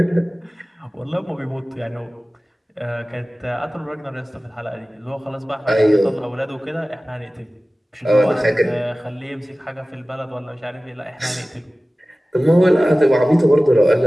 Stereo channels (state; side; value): normal; both; correlation 0.97